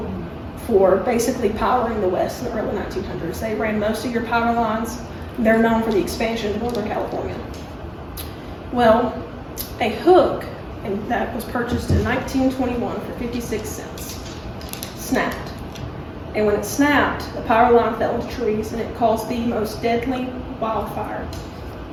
for basically powering the West in the early 1900s. They ran most of your power lines. They're known for the expansion of Northern California. Well, a hook, and that was purchased in 1921 for 56 cents, snapped. And when it snapped, the power line fell into trees and it caused the most deadly wildfire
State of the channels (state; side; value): identical; both; correlation 1.00